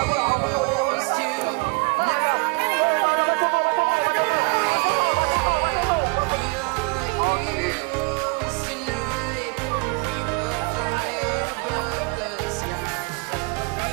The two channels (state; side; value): quieter; left; 30.5 dB